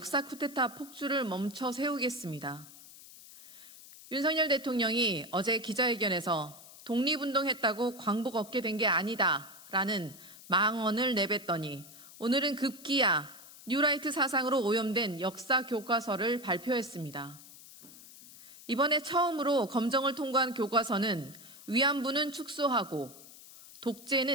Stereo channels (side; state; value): left; noise; hiss, 19 dB below the sound